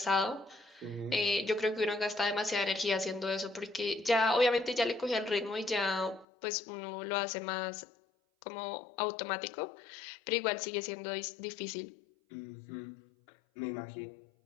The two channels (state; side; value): drops out; right; at 6.2 s